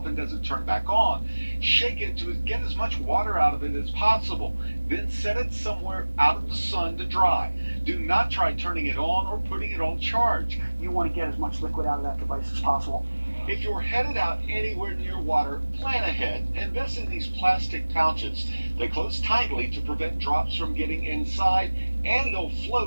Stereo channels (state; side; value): inverted; both; correlation -1.00